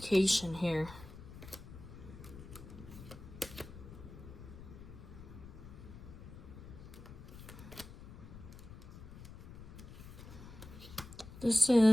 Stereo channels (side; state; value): left; noise; rumble, 14 dB below the sound